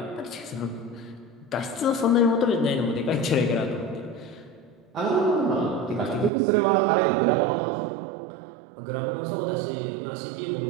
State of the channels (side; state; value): left; drops out; at 6.3 s